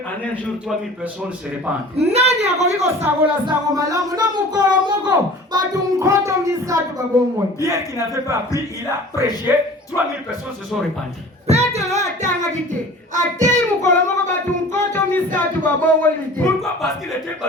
en un jour 3000 personnes se répandent. Nani akoki kosabola sango malamu na mukolo moko batu nkoto misatu babongwe. Pierre qui n'avait pas appris, il a prêché, 3000 personnes se sont répandues. Pourquoi? Parce qu'il était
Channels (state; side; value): normal; both; correlation 0.43